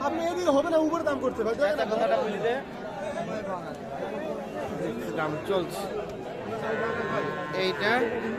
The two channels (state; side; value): identical; both; correlation 1.00